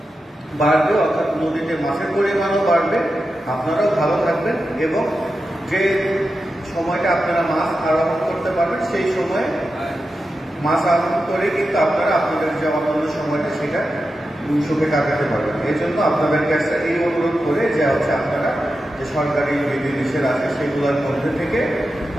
বাড়বে, অর্থাৎ নদীতে মাছের পরিমাণও বাড়বে, আপনারাও ভালো থাকবেন এবং যে সময়টা আপনারা মাছ আরোহণ করতে পারবেন সেই সময়ে মাছ আরোহণ করে কিন্তু আপনারা আপনাদের যে অন্যান্য সময়টা সেটা সুখে কাটাতে পারবেন। এই জন্য আপনাদের কাছে এই অনুরোধ করে যে হচ্ছে আপনারা যে সরকারি বিধিনিষেধ আছে সেগুলোর মধ্যে থেকে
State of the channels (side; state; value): both; normal; correlation 0.90